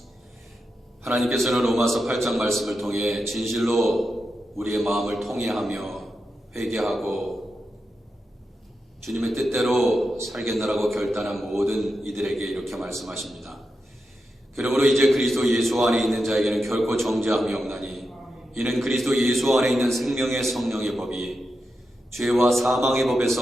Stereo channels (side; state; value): both; normal; correlation 0.88